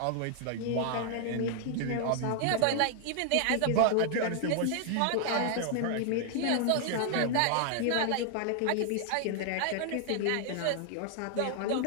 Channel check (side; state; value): both; different; correlation 0.00